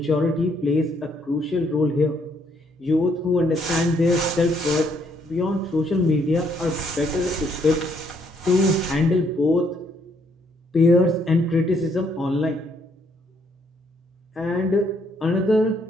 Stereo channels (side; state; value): both; normal; correlation 0.70